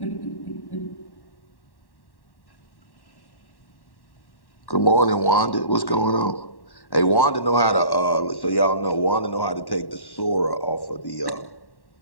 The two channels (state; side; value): late; right; 1.1 ms